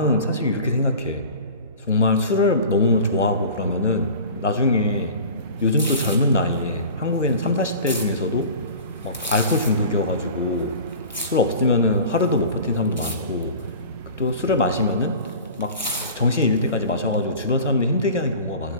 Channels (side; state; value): both; inverted; correlation -0.39